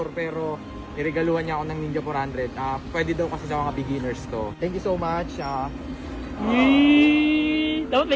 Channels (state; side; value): identical; both; correlation 1.00